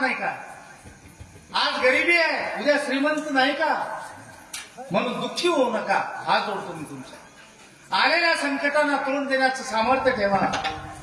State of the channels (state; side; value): identical; both; correlation 1.00